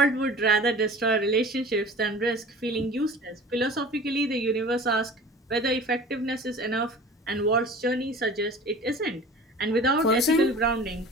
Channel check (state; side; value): normal; both; correlation 0.42